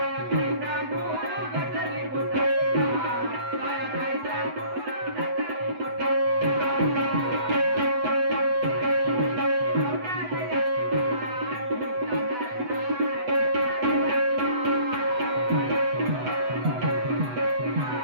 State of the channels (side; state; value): left; late; 8.0 ms